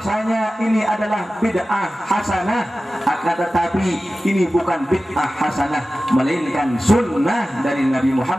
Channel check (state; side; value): normal; both; correlation 0.95